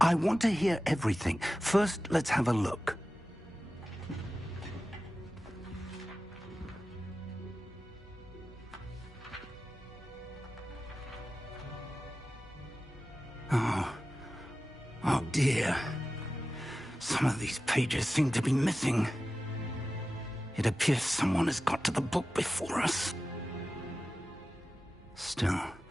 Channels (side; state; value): both; normal; correlation 0.94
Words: want to hear everything. First, let's have a look. Oh dear. Some of these pages seem to be missing. It appears someone has got to the book before us. Still,